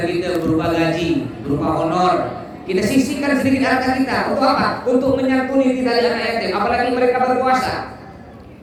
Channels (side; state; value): both; identical; correlation 1.00